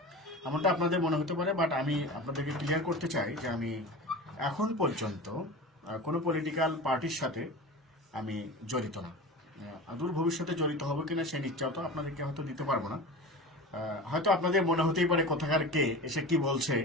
এমনটা আপনাদের মনে হতে পারে। বাট আমি আপনাদেরকে ক্লিয়ার করতে চাই যে আমি এখন পর্যন্ত কোনো পলিটিক্যাল পার্টির সাথে আমি জড়িত না। দূর ভবিষ্যতে জড়িত হবো কিনা সেই নিশ্চয়তা তো আপনাদেরকে হয়তো দিতে পারবো না। হয়তো আপনাদের মনে হতেই পারে কোথাকার কে এসে কি বলছে,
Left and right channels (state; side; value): normal; both; correlation 0.31